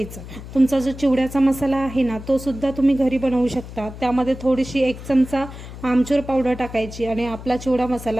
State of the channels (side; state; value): left; noise; hum, 13 dB below the sound